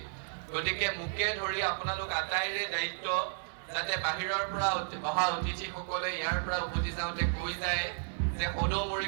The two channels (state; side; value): silent; left; digital silence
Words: গতিকে মোকে ধৰি আপোনালোক আটাইৰে দায়িত্ব যাতে বাহিৰৰ পৰা অহা অতিথিসকলে ইয়াৰ পৰা উভতি যাওঁতে কৈ যায় যে সদৌ